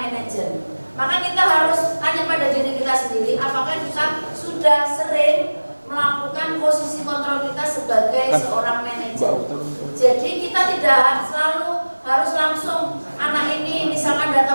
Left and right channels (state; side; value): inverted; both; correlation -1.00